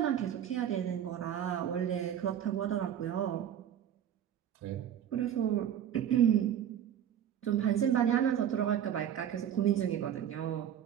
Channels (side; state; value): left; quieter; 9.8 dB